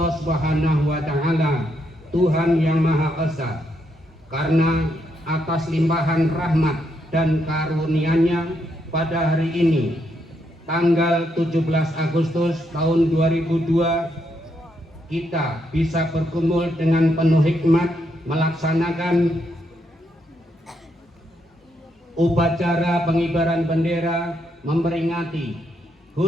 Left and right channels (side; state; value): both; normal; correlation 0.78